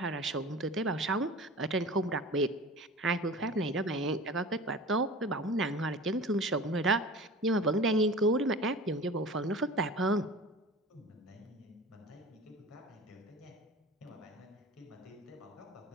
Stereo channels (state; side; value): normal; both; correlation 0.37